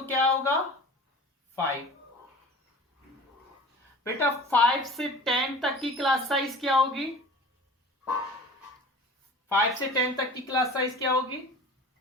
क्या होगा 5। बेटा 5 से 10 तक की क्लास साइज क्या होगी, 5 से 10 तक की क्लास साइज क्या होगी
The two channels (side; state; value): both; normal; correlation 0.40